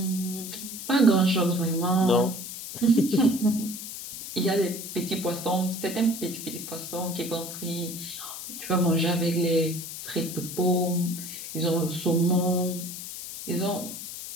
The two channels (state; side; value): noise; left; hiss, 9 dB below the sound